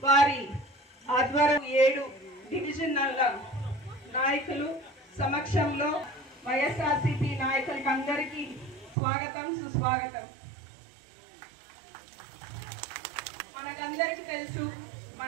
వారి ఆధ్వర్యం 7 డివిజన్ల నాయకులు సమక్షంలో వైఎస్ఆర్సీపీ నాయకులకి అందరికీ స్వాగతం, సుస్వాగతం. మనకందరికీ తెలుసు,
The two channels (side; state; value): left; drops out; at 9.0 s